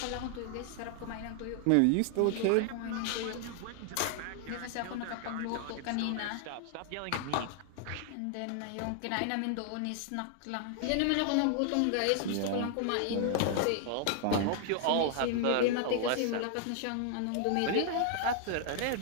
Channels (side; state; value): both; different; correlation 0.00